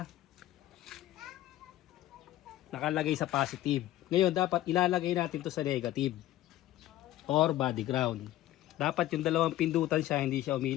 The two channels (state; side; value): quieter; right; 14.6 dB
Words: Nakalagay sa positive. Ngayon, dapat ilalagay natin to sa negative. Or body ground. Dapat yung dalawang pindutan siya, hindi siya